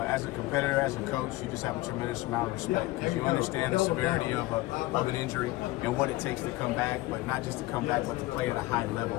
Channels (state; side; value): quieter; right; 18.9 dB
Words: as a competitor, as a coach, you just have a tremendous amount of respect because you understand the severity of an injury and what it takes to come back, but not just to come back, but to play at a high level.